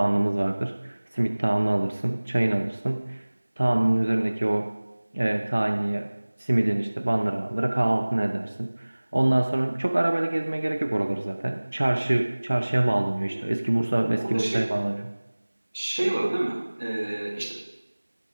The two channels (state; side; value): inverted; both; correlation -1.00